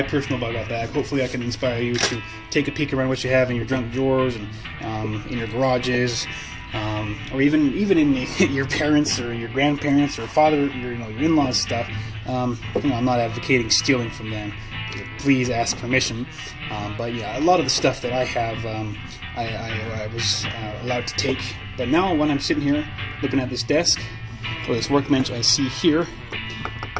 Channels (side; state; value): both; identical; correlation 1.00